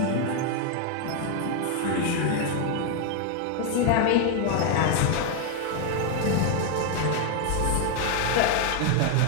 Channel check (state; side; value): different; both; correlation 0.01